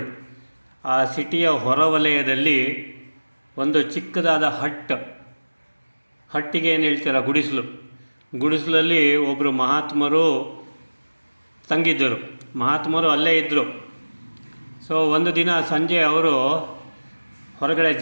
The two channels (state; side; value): inverted; both; correlation -1.00